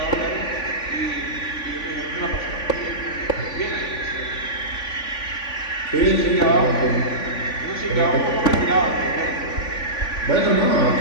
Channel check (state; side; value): late; right; 3.5 ms